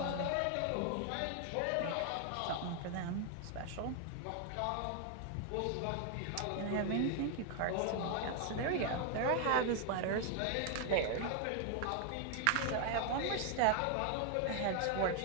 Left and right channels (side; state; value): both; different; correlation 0.00